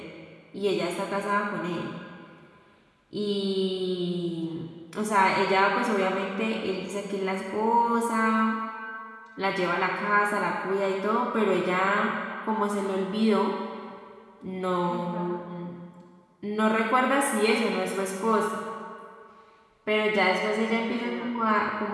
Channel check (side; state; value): both; identical; correlation 1.00